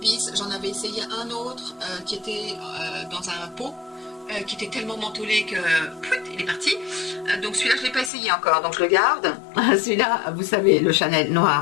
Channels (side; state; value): right; drops out; at 8.1 s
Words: j'en avais essayé un autre qui était dans un pot, qui était tellement mentholé que il est parti. Donc celui-là, je ne l'ai pas essayé encore, donc je le garde. Celui-là, vous savez, le Chanel